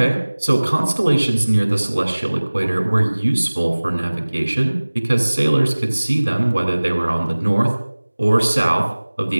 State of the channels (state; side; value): inverted; both; correlation -1.00